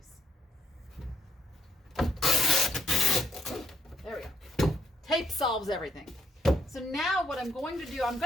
There we go. Tape solves everything. So now what I'm going to do, I'm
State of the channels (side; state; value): both; normal; correlation 0.75